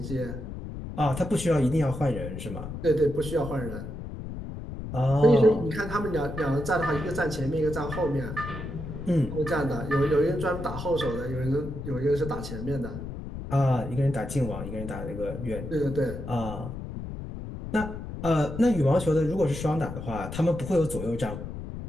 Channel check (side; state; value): left; noise; rumble, 8 dB below the sound